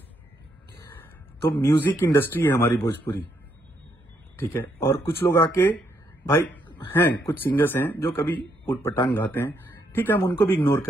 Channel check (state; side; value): normal; both; correlation 0.75